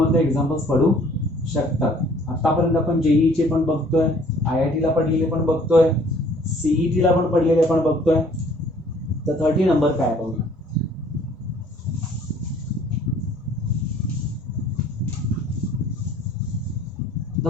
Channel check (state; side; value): normal; both; correlation 0.56